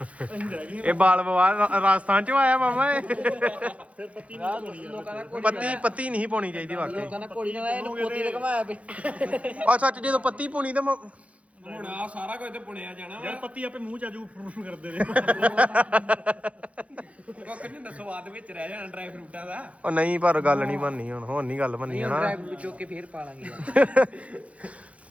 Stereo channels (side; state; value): left; late; 0.064 ms